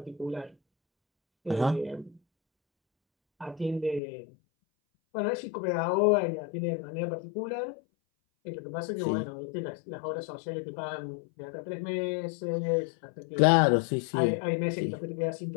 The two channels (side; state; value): right; drops out; at 4.0 s